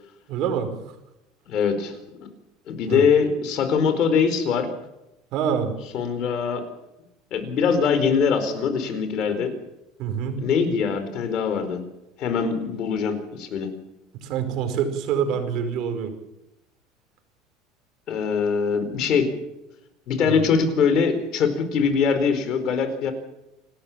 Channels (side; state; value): right; quieter; 4.0 dB